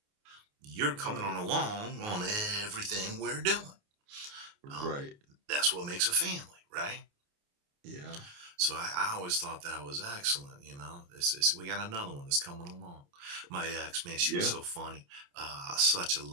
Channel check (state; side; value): late; left; 28 ms